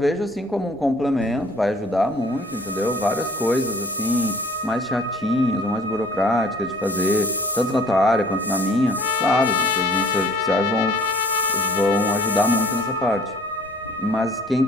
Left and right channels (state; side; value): noise; left; rumble, 27 dB below the sound